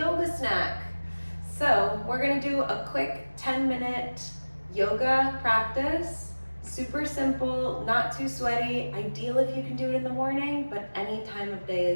snack. So we're gonna do a quick 10-minute yoga practice. Super simple, not too sweaty. Ideal if you can do it in the morning, but any time of day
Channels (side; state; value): both; inverted; correlation -1.00